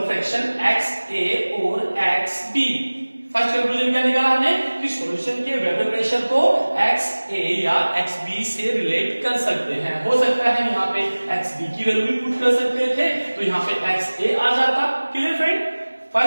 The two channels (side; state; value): both; inverted; correlation -1.00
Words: fraction X A और एक्स बी. फर्स्ट कंक्लूजन क्या निकाला हमने कि सॉल्यूशन के वेपर प्रेशर को एक्स ए या एक्स बी से रिलेट कर सकते हैं. हो सकता है यहाँ पे एक्स बी की वैल्यू भी पुट कर सकते थे तो यहाँ पे एक्स ए आ जाता. क्लियर फ्रेंड,